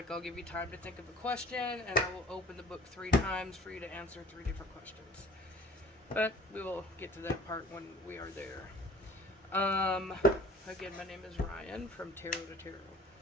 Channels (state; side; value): normal; both; correlation 0.47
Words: I'll give you time to think of a question and I will open the book 3 times for you to answer 3 different questions. But we will get to that part when we are there. Again, my name is Rian from Tarot to Tarot.